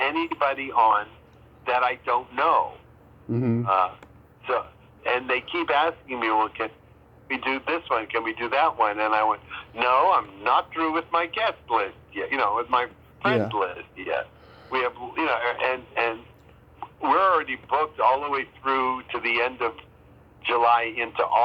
on that I don't know. Mm-hmm. And they keep asking me, well, can we do this one? Can we do that one? And I went, no, I'm not through with my guest list yet. You know, with my friends list yet. We have, you know, and we're already booked all the way through to the end of July into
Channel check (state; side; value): identical; both; correlation 1.00